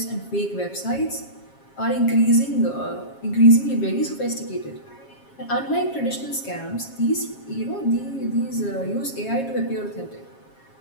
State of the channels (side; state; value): right; late; 7.4 ms